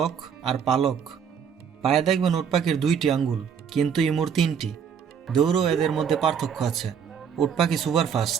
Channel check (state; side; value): quieter; left; 7.4 dB